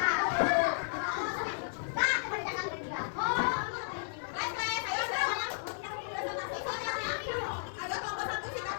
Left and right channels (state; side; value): silent; right; 55 dB below the other